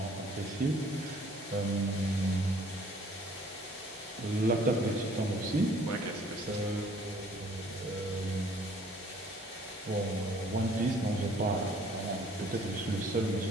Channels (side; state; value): both; normal; correlation 0.57